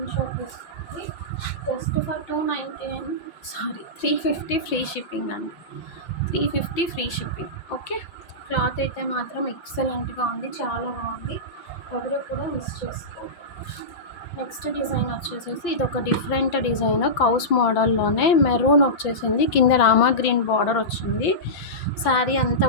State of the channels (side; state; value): right; late; 5.8 ms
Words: షాట్ తీసుకోండి. జస్ట్ ఫర్ 350 ఫ్రీ షిప్పింగ్ అండి, 350 ఫ్రీ షిప్పింగ్. ఓకే, క్లాత్ అయితే మాత్రం ఎక్సలెంట్గా ఉంది, చాలా బాగుంది, ఎవరు కూడా మిస్ చేసుకోండి. నెక్స్ట్ డిజైన్ వచ్చేసేసి ఇది ఒక డిఫరెంట్ డిజైన్, కౌస్ మోడల్లోనే మెరూన్ వచ్చేసింది, కింద రామా గ్రీన్ బార్డర్ వచ్చింది. శారీ అంతా